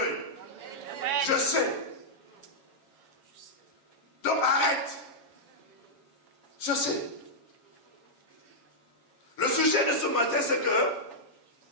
Je sais. Donc arrête. Je sais. Le sujet de ce matin, c'est que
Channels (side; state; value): right; late; 7.2 ms